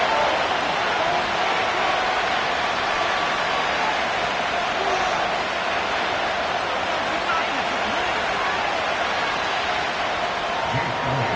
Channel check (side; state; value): both; identical; correlation 1.00